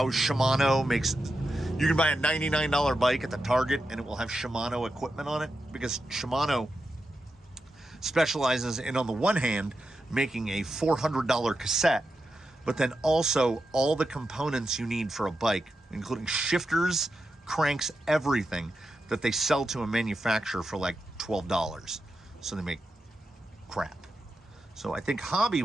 Shimano makes, you can buy a $99 bike at the Target and it will have Shimano equipment on it, because Shimano specializes in, on the one hand, making a $400 cassette, but then also all the components you need for a bike, including shifters, cranks, everything that they sell to a manufacturer for like $12. So they make crap. So I think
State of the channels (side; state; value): both; normal; correlation 0.88